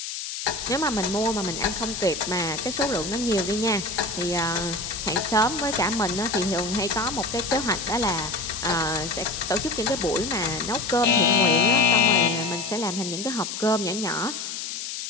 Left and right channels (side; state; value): left; noise; hiss, 6 dB below the sound